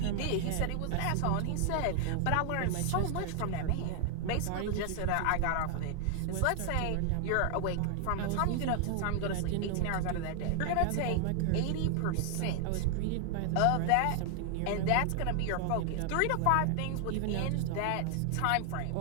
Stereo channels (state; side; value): different; both; correlation 0.00